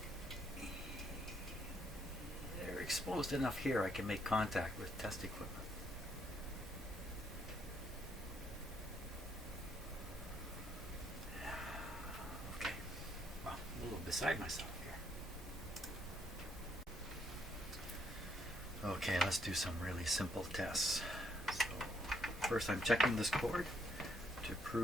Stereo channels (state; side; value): normal; both; correlation 0.73